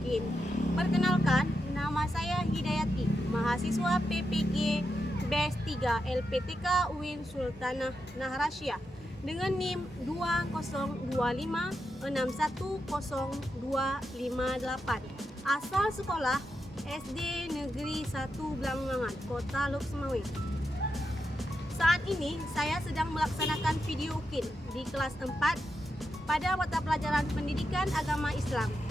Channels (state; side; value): normal; both; correlation 0.86